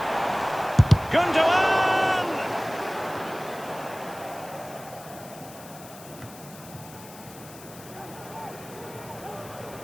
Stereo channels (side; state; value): left; noise; hiss, 18 dB below the sound